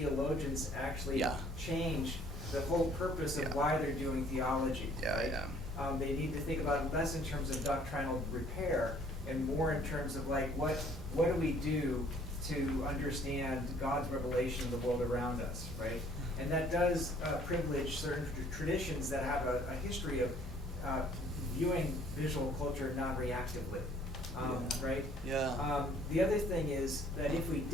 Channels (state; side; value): normal; both; correlation 0.59